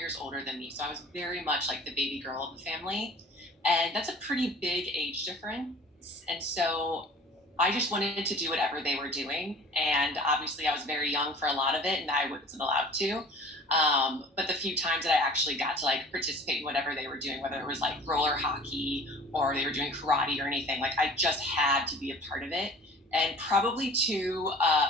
older than me. So I was very much like the baby girl of the family. And that's a pretty big age difference. And so I just wanted to do whatever they were doing. And obviously I was very young for a lot of it and I wasn't allowed to. But the few times that I actually got to like participate in whatever they were doing, whether it was like roller hockey or they were doing karate or anything, like I just had to be a part of it. And probably to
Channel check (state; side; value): normal; both; correlation 0.46